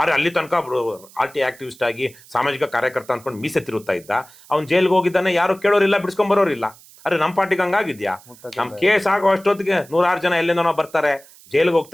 ಅಲ್ಲಿ ತನಕ RT ಆಕ್ಟಿವಿಸ್ಟ್ ಆಗಿ ಸಾಮಾಜಿಕ ಕಾರ್ಯಕರ್ತ ಅಂದ್ಕೊಂಡು ಮೀಸೆ ತಿರುತ್ತಾ ಇದ್ದ. ಅವ್ನು ಜೈಲ್ಗೆ ಹೋಗಿದ್ದಾನೆ, ಯಾರು ಕೇಳೋರಿಲ್ಲ, ಬಿಡಿಸ್ಕೊಂಡ್ ಬರೋರಿಲ್ಲ. ಅರೆ ನಮ್ಮ ಪಾರ್ಟಿಗೆ ಹಂಗಾಗಿದ್ಯಾ? ನಮ್ಮ ಕೇಸ್ ಆಗೋ ಅಷ್ಟೊತ್ತಿಗೆ 100 ಜನ ಎಲ್ಲಿಂದನೋ ಬರ್ತಾರೆ, ಜೈಲಿಗೆ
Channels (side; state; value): right; noise; hiss, 24 dB below the sound